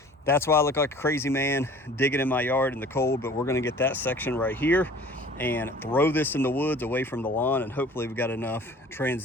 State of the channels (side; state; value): both; normal; correlation 0.47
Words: that's why I look like a crazy man digging in my yard in the cold. But we're going to get that section right here and throw this in the woods away from the lawn, and hopefully we've got enough